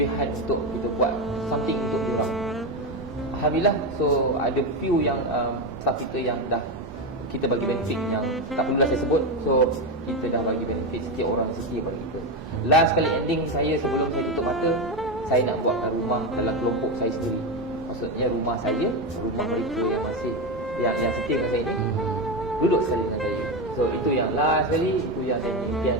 untuk kita buat something untuk dia orang. Alhamdulillah, so ada few yang staff kita yang dah kita bagi benefit yang tak perlulah saya sebut. So kita dah bagi benefit setiap orang setia pada kita. Last kali ending saya sebelum saya tutup mata, saya nak buatkan rumah dalam kelompok saya sendiri. Maksudnya rumah saya, rumah mereka yang masih yang setia dengan saya ni duduk sekali dengan saya. So itu yang last kali, itu yang saya impian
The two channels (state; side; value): normal; both; correlation 0.13